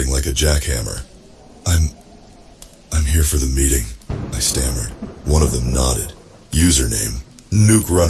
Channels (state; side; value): identical; both; correlation 1.00